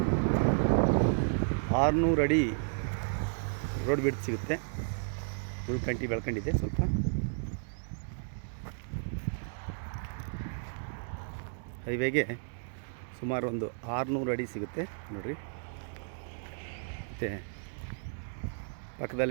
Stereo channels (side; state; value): left; silent; digital silence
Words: 600 ಅಡಿ ರೋಡ್ ಬಿಡ್ತು ಸಿಗುತ್ತೆ. ಉಳ್ಕಂಟಿ ಬೆಳ್ಕೊಂಡಿದೆ ಸ್ವಲ್ಪ. ಹೈವೇಗೆ ಸುಮಾರು ಒಂದು 600 ಅಡಿ ಸಿಗುತ್ತೆ ನೋಡಿರಿ. ಮತ್ತು